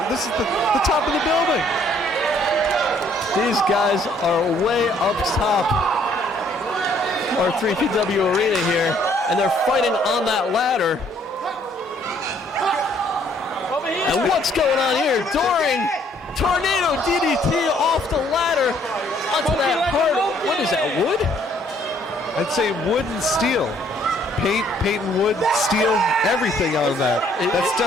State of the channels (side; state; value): both; normal; correlation 0.64